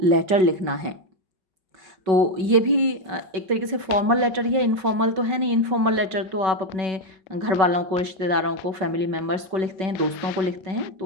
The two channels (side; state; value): left; late; 5.3 ms